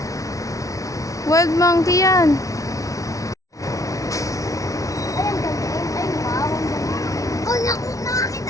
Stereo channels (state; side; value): late; right; 0.16 ms